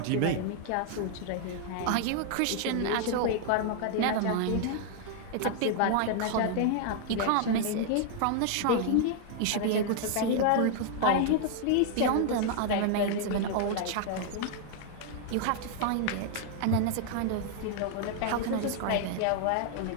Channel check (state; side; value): different; both; correlation 0.00